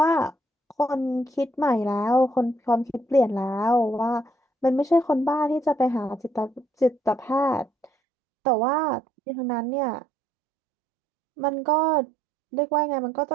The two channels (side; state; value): left; drops out; at 7.9 s